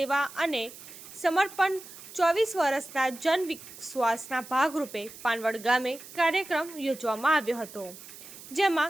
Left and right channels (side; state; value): right; noise; hiss, 16 dB below the sound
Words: અને સમર્પણ 24 વર્ષના જન વિશ્વાસના ભાગરૂપે પાનવડ ગામે કાર્યક્રમ યોજવામાં આવ્યો હતો,